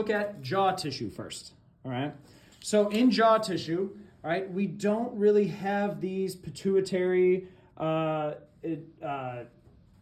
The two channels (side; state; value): both; identical; correlation 1.00